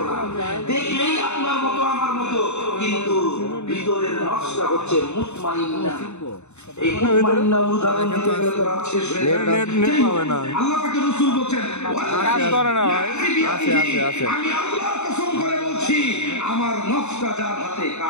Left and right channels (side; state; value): right; late; 0.82 ms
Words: না, দেখলেই আপনার মতো আমার মতো, কিন্তু ভিতরের নফসটা হচ্ছে মুতমাইন্না। এই মুতমাইন্না উদাহরণ দিতে গেলে তো রাত শেষ হয়ে যাবে। আল্লাহ পাকের রাসূল বলেন, কাজ করে না ভাই, আছে আমি আল্লাহর কসম করে বলছি, আমার নফসটা যার হাতে,